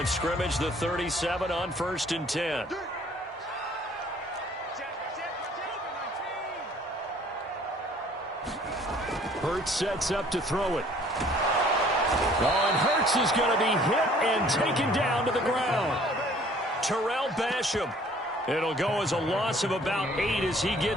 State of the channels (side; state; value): both; normal; correlation 0.56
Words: scrimmage, the 37 on 1st and 10. Hurts sets up to throw it. Oh, and Hurts is going to be hit and taken down to the ground. Terrell Basham. It'll go as a loss of about 8 as he